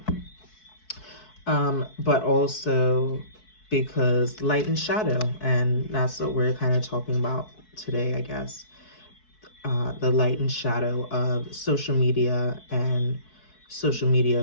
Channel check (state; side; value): late; right; 4.6 ms